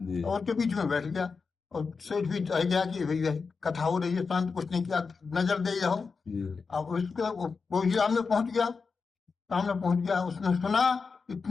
और के बीच में बैठ गया और सेठ भी रह गया कि भैया कथा हो रही है, शांत कुछ नहीं किया, नजर दे जाओ। अब उसको वो सामने पहुंच गया, उसने सुना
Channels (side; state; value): right; quieter; 4.9 dB